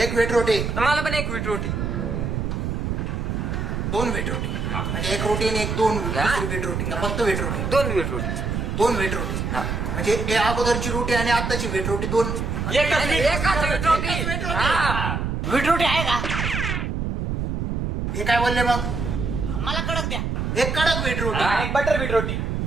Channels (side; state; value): right; noise; rumble, 2 dB below the sound